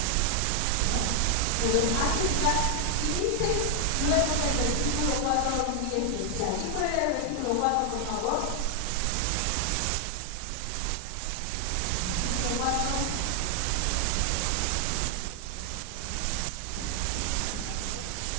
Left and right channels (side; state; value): both; different; correlation 0.00